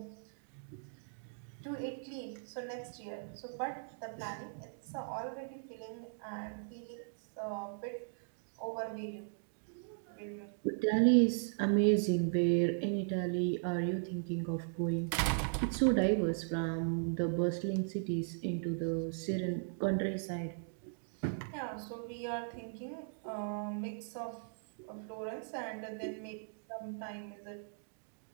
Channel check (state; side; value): silent; left; digital silence